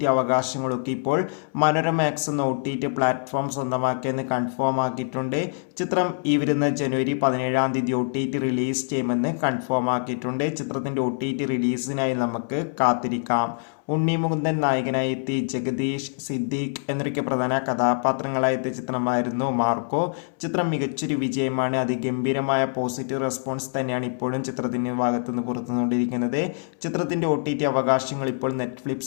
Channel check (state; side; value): silent; right; 62 dB below the other